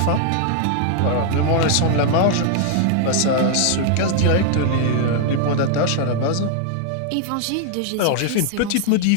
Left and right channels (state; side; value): different; both; correlation 0.00